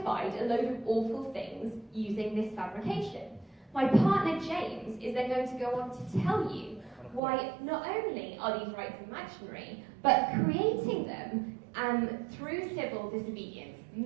a load of awful things using this fabrication. My partner James is then going to go on to tell you why not only are these rights imaginary, but creating them through civil disobedience,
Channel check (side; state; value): left; drops out; at 7.2 s